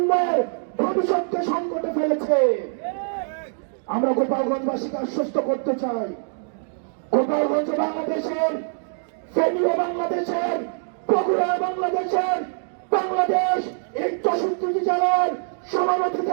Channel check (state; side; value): silent; left; digital silence